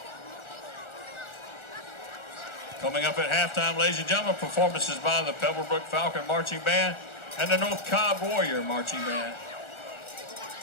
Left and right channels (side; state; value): right; late; 1.4 ms